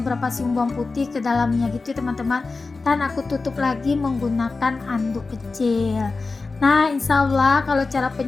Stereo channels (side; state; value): right; quieter; 3.9 dB